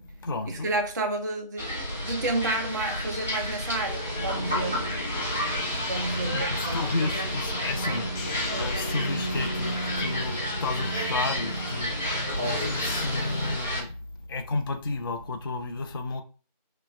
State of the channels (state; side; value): inverted; both; correlation -0.45